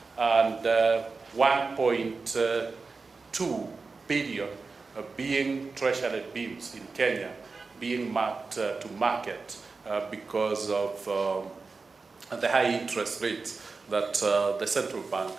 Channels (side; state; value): left; quieter; 4.2 dB